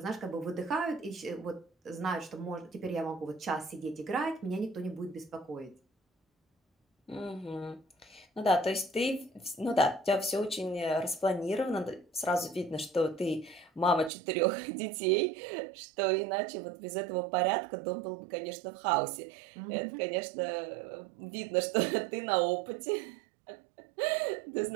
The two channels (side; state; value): left; drops out; at 14.1 s